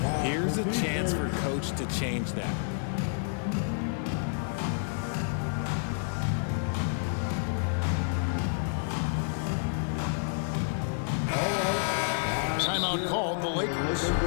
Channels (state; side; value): silent; right; 58 dB below the other